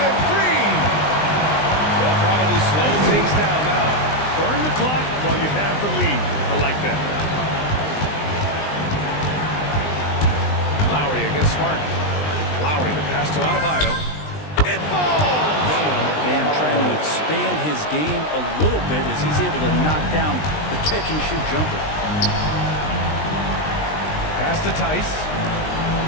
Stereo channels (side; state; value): right; late; 20 ms